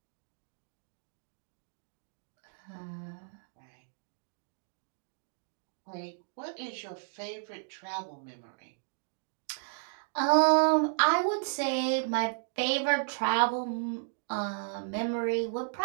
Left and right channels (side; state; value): left; silent; digital silence